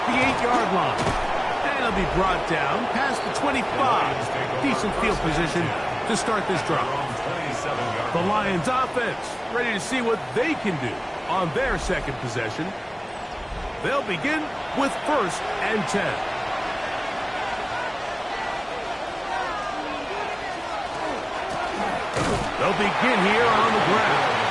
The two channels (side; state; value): both; identical; correlation 1.00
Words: the 8-yard line. And it'll be brought down past the 25. Decent field position to start this drive. The Lions offense ready to see what they can do on their second possession. They'll begin with 1st and 10. They'll begin here on the ground.